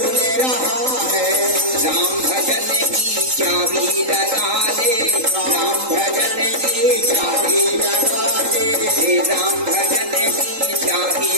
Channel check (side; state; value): left; late; 3.8 ms